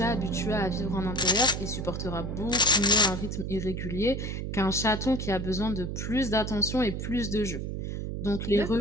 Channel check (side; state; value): right; noise; hum, 4 dB below the sound